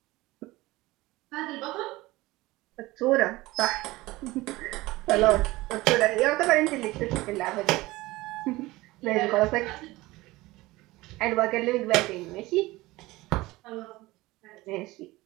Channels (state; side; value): quieter; left; 19.7 dB